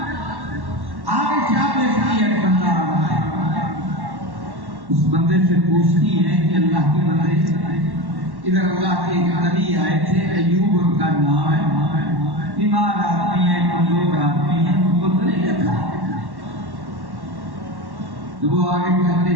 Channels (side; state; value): left; late; 1.1 ms